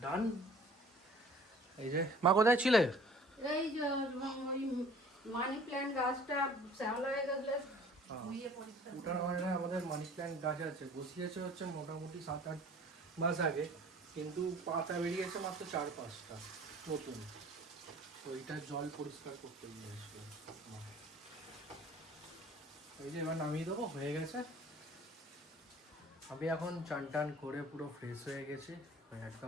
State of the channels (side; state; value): both; normal; correlation 0.50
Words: ডান। এই যে মা কোথায় ছিলে? এই যে ওই মানি প্ল্যান্ট গাছটা শ্যাওলা হয়ে গেলে ধুইয়ে পরিষ্কার ওটার আমাদের মানি প্ল্যান্ট গাছ আছে, বসিয়েছে হচ্ছে মোটামুটি 7-8 মাস আগে, কিন্তু পাতা বেরিয়েছে মাত্র 4-5টা নতুন। তো এইটার জল পরিষ্কার করতে গিয়ে আসবে। এই যে এবার নামিয়ে দেবো, হয়ে গেছে। আমি এখন চান টান করে পুরো ফ্রেশ হয়ে গেছি,